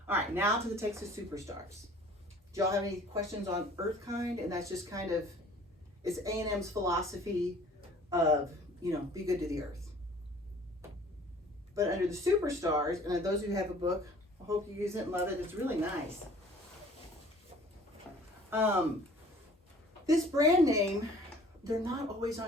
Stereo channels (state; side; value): normal; both; correlation 0.51